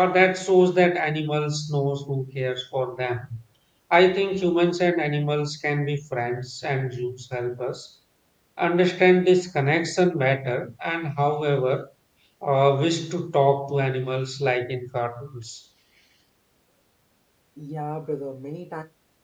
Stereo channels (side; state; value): both; identical; correlation 1.00